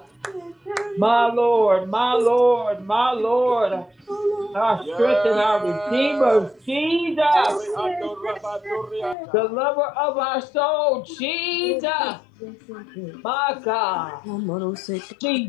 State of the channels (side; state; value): right; drops out; at 9.2 s